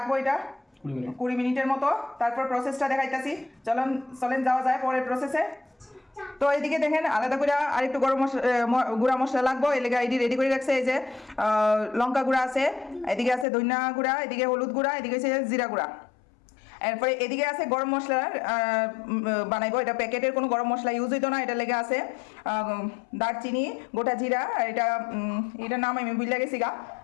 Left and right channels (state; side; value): drops out; right; at 13.5 s